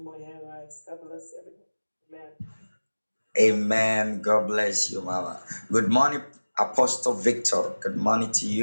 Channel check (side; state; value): both; inverted; correlation -1.00